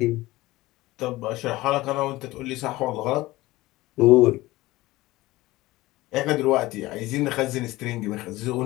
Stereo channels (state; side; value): quieter; right; 18.7 dB